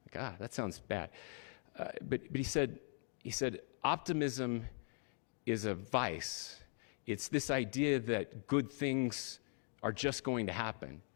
Like, that sounds bad. But he said, optimism is a vice. It's this idea that good things are just going to happen.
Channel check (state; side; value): silent; right; 51 dB below the other